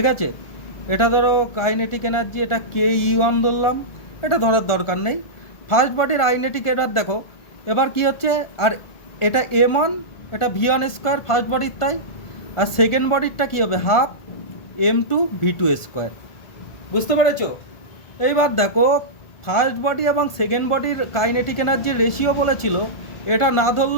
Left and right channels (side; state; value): right; late; 1.4 ms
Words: আছে, এটা ধরো কাইনেটিক এনার্জি, এটা ke1 ধরলাম, এটা ধরার দরকার নেই। ফার্স্ট বডির কাইনেটিক এনার্জি দেখো এবার কি হচ্ছে, আর এটা m1 এটা v1 স্কোয়ার ফার্স্ট বডির, তাই আর সেকেন্ড বডিরটা কী হবে হাফ m2 v2 স্কোয়ার। বুঝতে পেরেছো? এইবার দেখো ফার্স্ট বডি এবং সেকেন্ড বডির কাইনেটিক এনার্জির রেশিও বলেছিল, এটা না